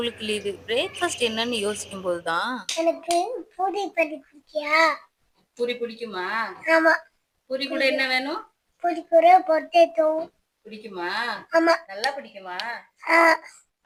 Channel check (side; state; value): both; identical; correlation 1.00